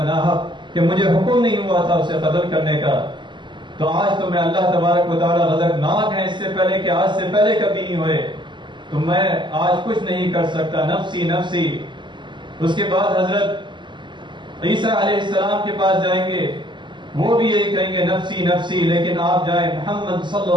ناحق، کہ مجھے حکم نہیں ہوا تھا اسے قتل کرنے کا، تو آج تو میں اللہ تبارک و تعالیٰ غضبناک ہے، اس سے پہلے کہ آج سے پہلے کبھی نہیں ہوئے، تو میں آج کچھ نہیں کر سکتا، نفسی نفسی۔ اس کے بعد حضرت عیسیٰ علیہ السلام کے پاس جائیں گے، وہ بھی یہی کہیں گے نفسی نفسی، لیکن آپ جائیں محمد صلی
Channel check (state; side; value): late; left; 0.22 ms